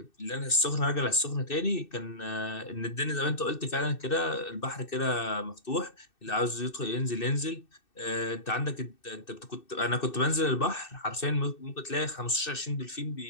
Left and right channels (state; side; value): late; right; 2.6 ms